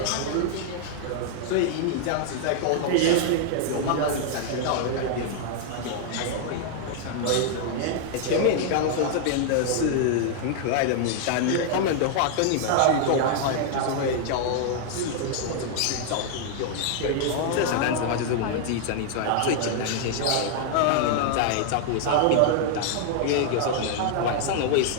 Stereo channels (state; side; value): different; both; correlation -0.01